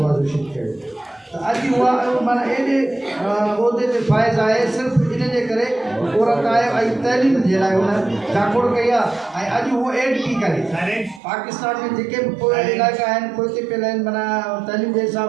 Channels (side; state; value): left; drops out; at 11.2 s